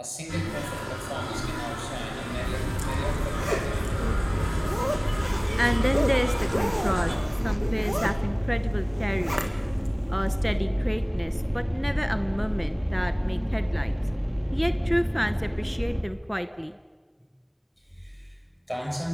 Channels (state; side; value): identical; both; correlation 1.00